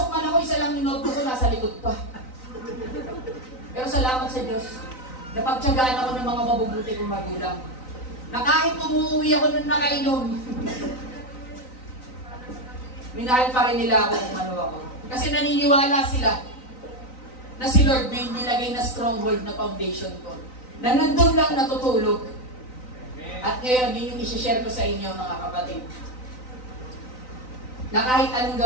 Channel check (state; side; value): late; right; 3.9 ms